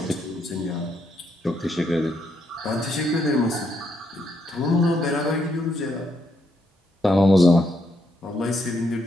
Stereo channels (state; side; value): normal; both; correlation 0.77